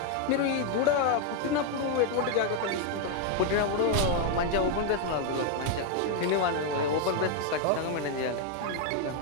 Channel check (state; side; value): different; both; correlation 0.01